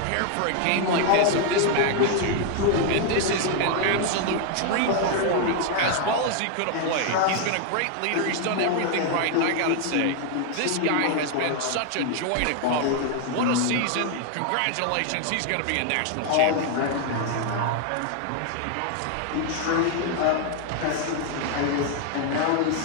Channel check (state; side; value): different; both; correlation 0.00